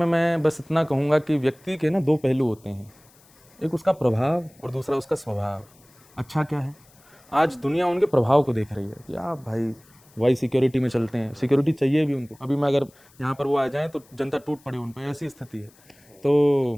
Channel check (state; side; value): noise; left; hiss, 29 dB below the sound